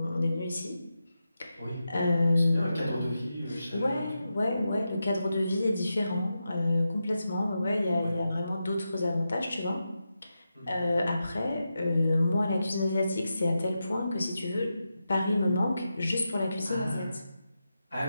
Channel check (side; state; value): both; inverted; correlation -0.89